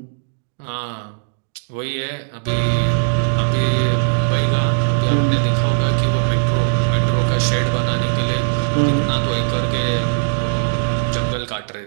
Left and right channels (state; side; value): silent; left; digital silence